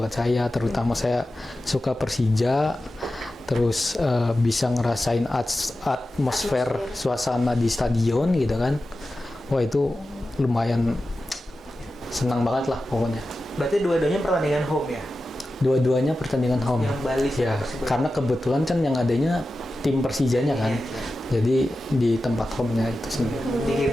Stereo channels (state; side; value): normal; both; correlation 0.93